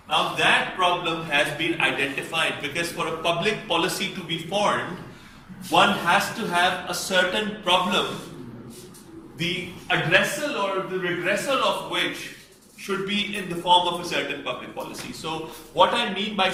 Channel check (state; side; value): identical; both; correlation 1.00